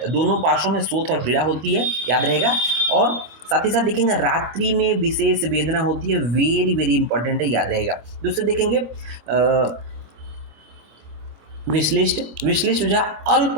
दोनों पार्श्वों में शोथ और पीड़ा होती है, याद रहेगा। और साथ ही साथ देखेंगे रात्रि में विशेष वेदना होती है, वेरी वेरी इंपॉर्टेंट है, याद रहेगा। दूसरे देखेंगे विश्लिष्ट। विश्लिष्ट हो जाए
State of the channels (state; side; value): late; left; 26 ms